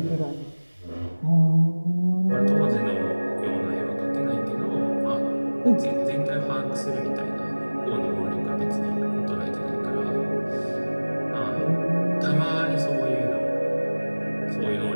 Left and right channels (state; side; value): inverted; both; correlation -1.00